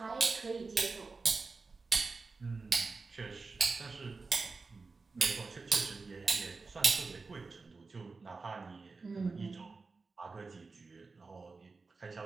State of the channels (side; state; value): left; quieter; 4.1 dB